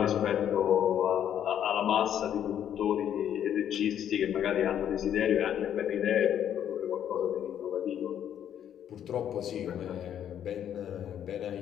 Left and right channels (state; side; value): quieter; right; 9.9 dB